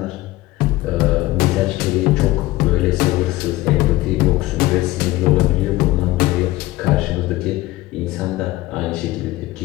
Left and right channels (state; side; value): quieter; right; 17.9 dB